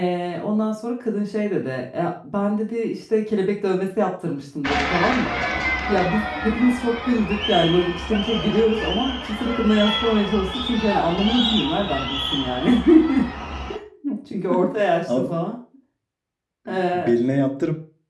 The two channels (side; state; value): both; identical; correlation 1.00